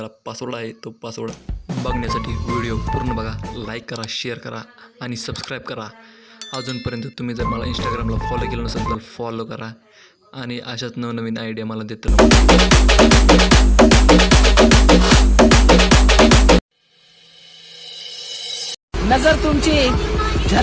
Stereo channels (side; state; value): both; identical; correlation 1.00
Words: पासवर्ड आहे, तो पासवर्ड बघण्यासाठी व्हिडिओ पूर्ण बघा, लाईक करा, शेअर करा आणि सबस्क्राईब करा. अजूनपर्यंत तुम्ही जर मला इंस्टाग्रामला फॉलो केलं नसेल तर फॉलो करा आणि अशाच नवनवीन आयडिया मला देत राहा. नजर तुमची,